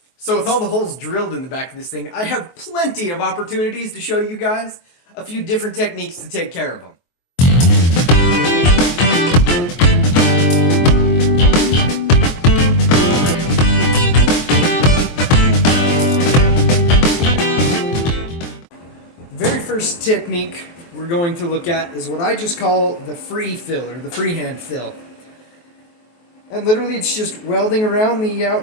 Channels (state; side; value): late; right; 23 ms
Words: So with all the holes drilled in the back of this thing, I have plenty of opportunities to show you guys a few different techniques to take care of them. The very first technique we're going to look at is what I just call the free fill, or the freehand fill. And literally it's just welding around the